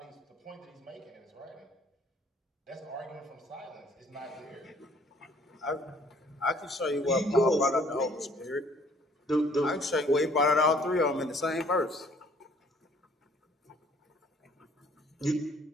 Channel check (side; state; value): both; normal; correlation 0.58